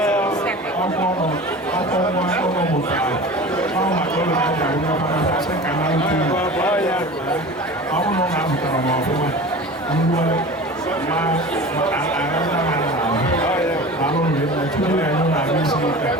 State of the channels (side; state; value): both; normal; correlation 0.36